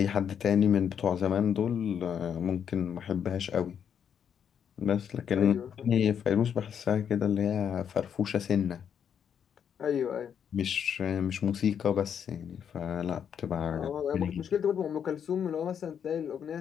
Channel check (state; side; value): quieter; right; 8.1 dB